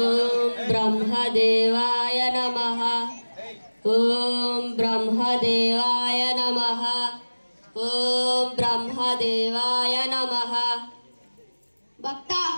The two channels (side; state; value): both; inverted; correlation -1.00